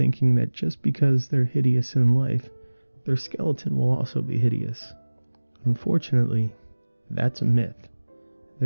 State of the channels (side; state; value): both; inverted; correlation -1.00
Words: that just because they're hideous in life, their skeleton will also be hideous. Unfortunately, that's a myth.